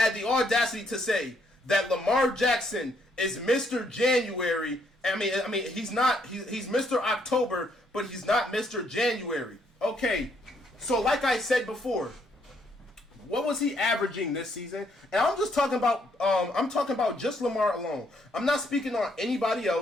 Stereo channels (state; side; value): normal; both; correlation 0.71